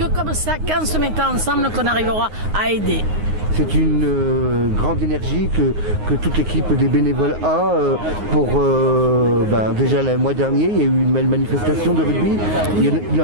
comme ça, qu'en se mettant ensemble, qu'on arrivera à aider. C'est une grande énergie que toute l'équipe des bénévoles a pour déjà le mois dernier il y a eu une belle manifestation de rugby, il y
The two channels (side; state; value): left; late; 9.6 ms